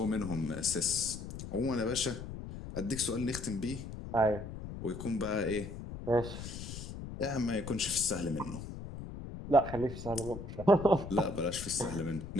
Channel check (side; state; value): left; noise; rumble, 9 dB below the sound